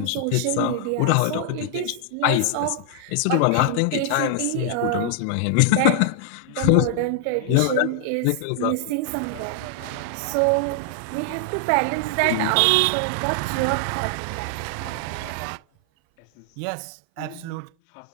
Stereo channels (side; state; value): both; different; correlation -0.01